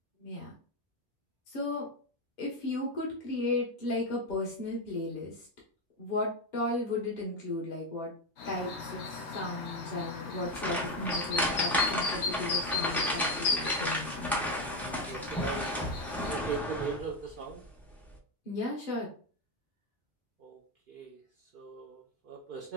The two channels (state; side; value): normal; both; correlation 0.09